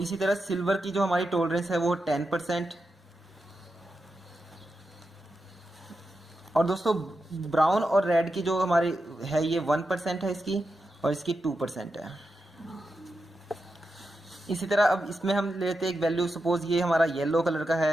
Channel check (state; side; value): normal; both; correlation 0.88